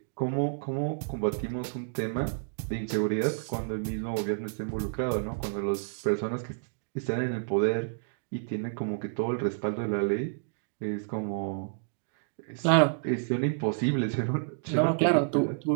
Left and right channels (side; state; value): left; silent; digital silence